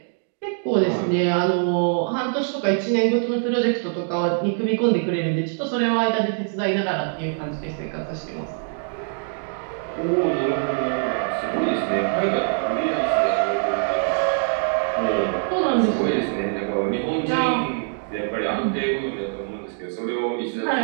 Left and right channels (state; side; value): silent; left; 63 dB below the other